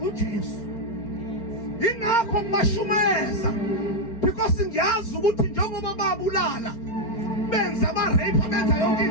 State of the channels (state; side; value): late; right; 4.4 ms